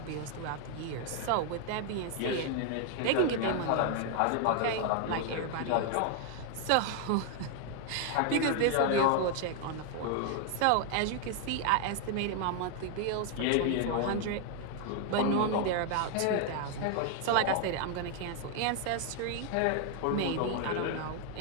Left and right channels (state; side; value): different; both; correlation 0.00